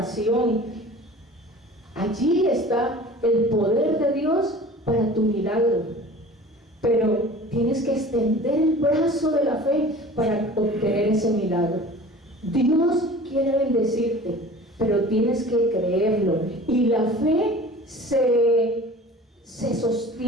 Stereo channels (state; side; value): normal; both; correlation 0.42